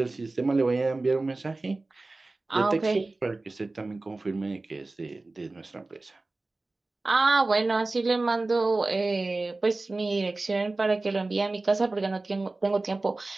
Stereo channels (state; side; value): quieter; left; 3.2 dB